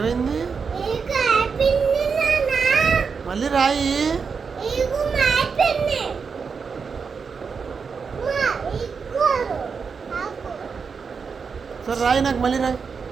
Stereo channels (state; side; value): quieter; left; 5.6 dB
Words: మళ్ళీ రాయి. సరే రాయి, నాకు మళ్ళీ రాయి.